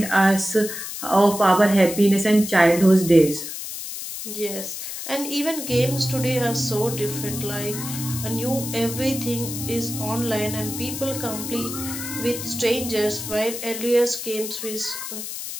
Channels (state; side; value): noise; left; hiss, 7 dB below the sound